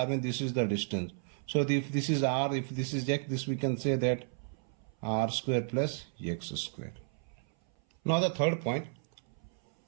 means this is the distance. So if this is R, if this is X, this we can say that R square plus X square. Now the third point,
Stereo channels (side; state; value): left; silent; 56 dB below the other